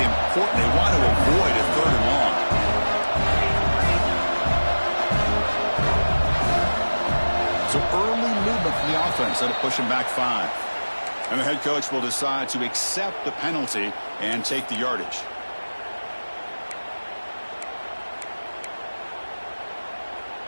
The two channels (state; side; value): inverted; both; correlation -1.00